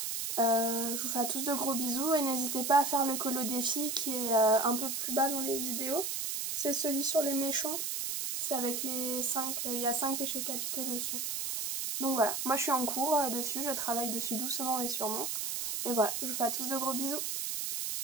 Je vous fais à tous de gros bisous et n'hésitez pas à faire le colo défi qui est un peu plus bas dans les vidéos. C'est celui sur les méchants. C'est avec les 5, il y a 5 péchés capitaux dessus. Donc voilà, moi je suis en cours dessus, je travaille dessus doucement mais sûrement. Et voilà, je vous fais à tous de gros bisous.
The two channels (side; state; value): right; noise; hiss, 2 dB below the sound